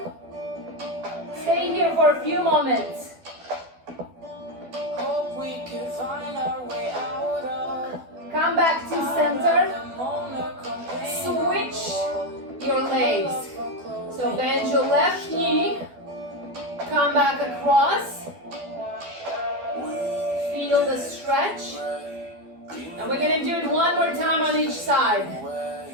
Stay here for a few moments. Come back to center. Switch your legs. So bend your left knee, come back across feel the stretch. And we're gonna do it one more time on each side.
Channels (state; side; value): late; left; 12 ms